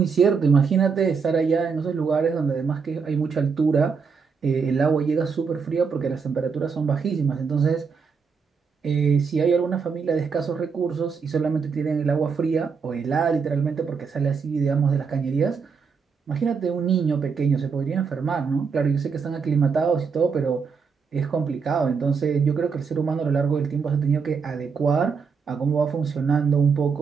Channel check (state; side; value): quieter; left; 5.6 dB